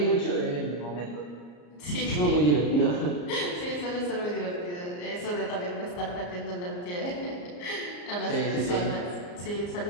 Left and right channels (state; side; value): late; right; 34 ms